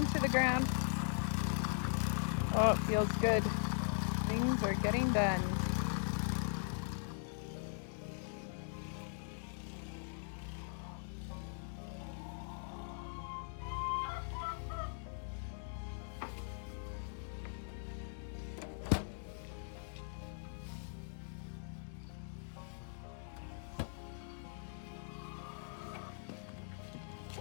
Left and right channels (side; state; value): right; silent; digital silence